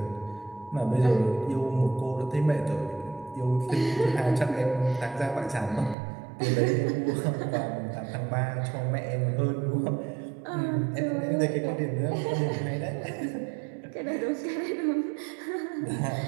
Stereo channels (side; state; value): left; drops out; at 6.0 s